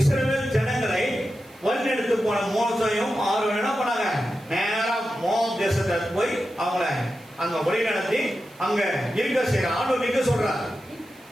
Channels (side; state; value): right; noise; hiss, 27 dB below the sound